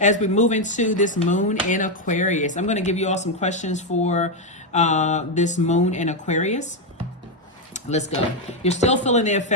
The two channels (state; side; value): normal; both; correlation 0.04